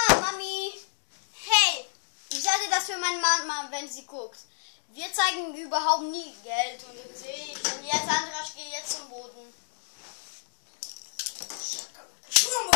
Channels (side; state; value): right; silent; digital silence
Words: Mami. Hey, ich sage das für meine Mama, wenn sie guckt. Wir zeigen überhaupt nie Geld. Und du siehst, und jetzt Andra, ich gehe jetzt zum Boden.